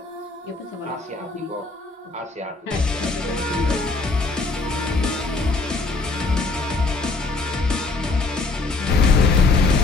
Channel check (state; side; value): quieter; right; 3.6 dB